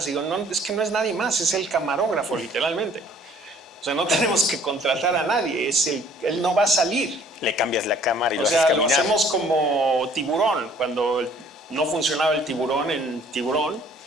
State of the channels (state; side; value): normal; both; correlation 0.57